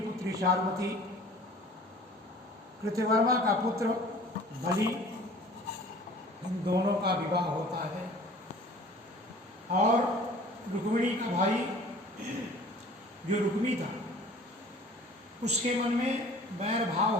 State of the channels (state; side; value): normal; both; correlation 0.47